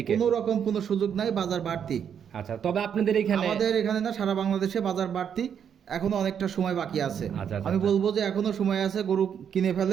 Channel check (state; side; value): quieter; left; 8.1 dB